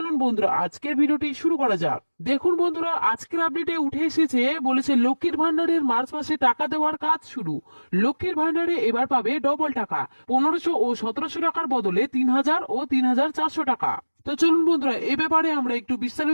বন্ধুরা, আজকের ভিডিওটি শুরু করা যাক। দেখুন বন্ধুরা, আজকের আপডেটে উঠে এসেছে, বলেছে লক্ষ্মীর ভান্ডারের মার্চ মাসে টাকা দেওয়ার কাজ শুরু। লক্ষ্মীর ভান্ডারে এবার পাবে ডবল টাকা, 1500 ও 1700 টাকার বদলে 3000 ও 3400 টাকা। তো চলুন বন্ধুরা, এ ব্যাপারে আমরা একটু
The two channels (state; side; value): inverted; both; correlation -1.00